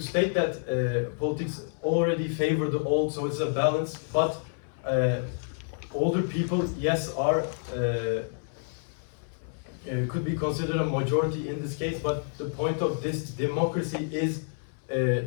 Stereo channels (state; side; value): silent; right; 59 dB below the other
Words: that politics already favor the old, so it's a balance, but older people, yes, are could be considered a majority in this case, but the point of this democracy is